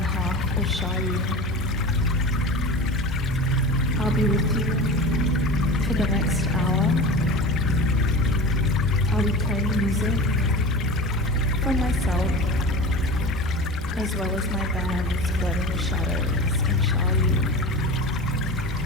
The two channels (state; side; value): normal; both; correlation 0.32